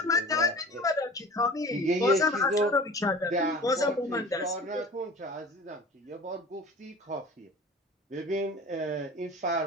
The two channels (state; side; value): normal; both; correlation 0.41